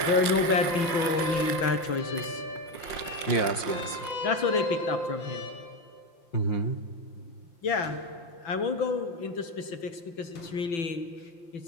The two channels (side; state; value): right; late; 5.6 ms